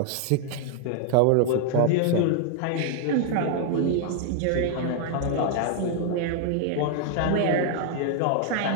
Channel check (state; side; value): different; both; correlation 0.00